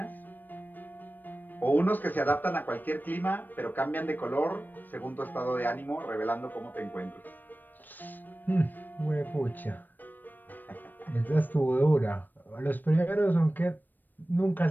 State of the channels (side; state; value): right; late; 0.090 ms